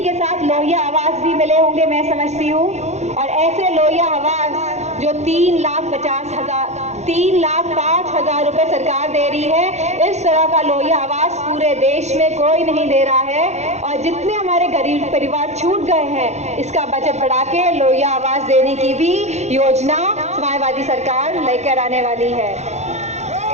के साथ लोहिया आवास भी मिले होंगे, मैं समझती हूँ। और ऐसे लोहिया आवास जो 3,05,000 रुपए सरकार दे रही है, इस तरह का लोहिया आवास पूरे देश में कोई नहीं दे रहा है। और जितने हमारे गरीब परिवार छूट गए हैं, इसका बजट बढ़ा के लोहिया आवास देने की भी योजना समाजवादी सरकार लेकर आने वाली है।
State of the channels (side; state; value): left; late; 0.33 ms